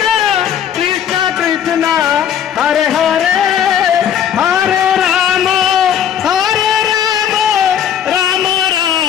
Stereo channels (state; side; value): quieter; right; 9.1 dB